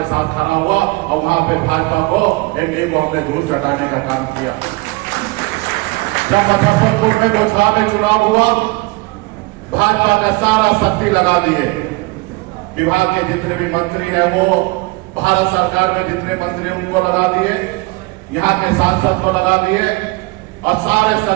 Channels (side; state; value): left; quieter; 24.3 dB